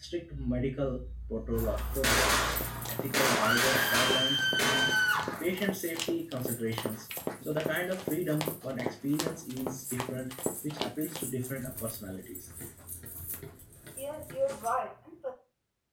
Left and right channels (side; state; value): both; identical; correlation 1.00